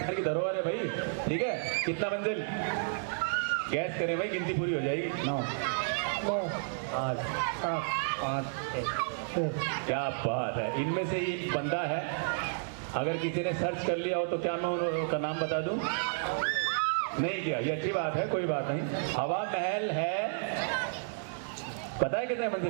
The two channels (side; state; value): left; silent; 57 dB below the other